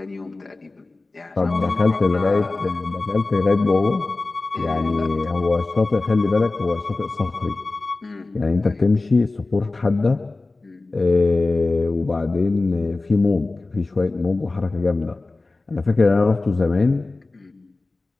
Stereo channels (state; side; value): quieter; right; 3.3 dB